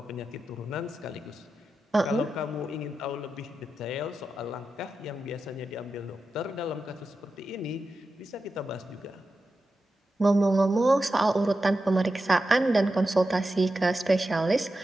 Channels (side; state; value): both; normal; correlation 0.90